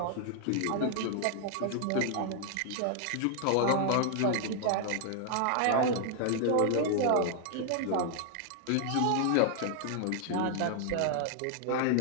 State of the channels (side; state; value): both; different; correlation 0.00